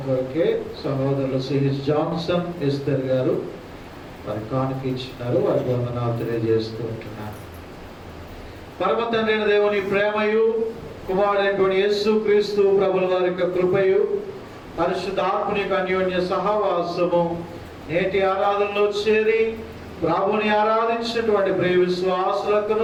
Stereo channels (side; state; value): both; identical; correlation 1.00